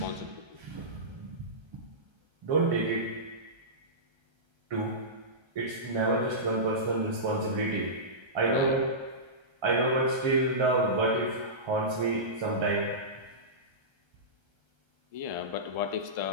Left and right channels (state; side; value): late; left; 1.3 ms